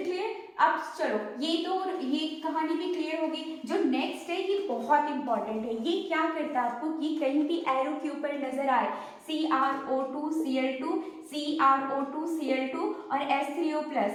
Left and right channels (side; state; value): both; identical; correlation 1.00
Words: clear. अब चलो ये कहानी भी क्लियर होगी। जो नेक्स्ट है ये बहुत इंपॉर्टेंट है। ये क्या करता है आपको कि कहीं भी एरो के ऊपर नजर आए CrO2Cl2 CrO2Cl2 और H3O+,